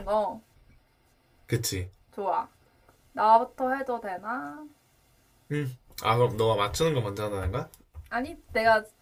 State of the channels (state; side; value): identical; both; correlation 1.00